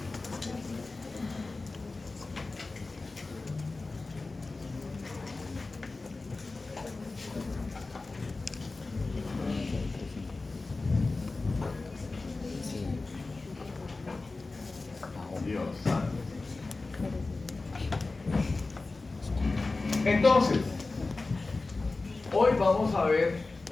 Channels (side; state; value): right; quieter; 3.5 dB